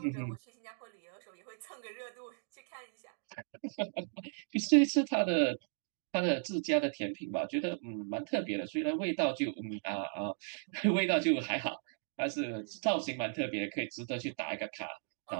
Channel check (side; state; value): left; silent; digital silence